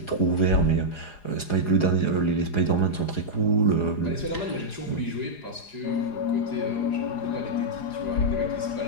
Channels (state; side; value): late; right; 4.9 ms